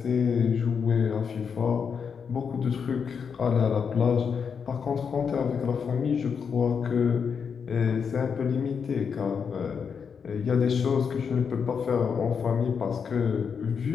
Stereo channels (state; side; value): quieter; right; 6.4 dB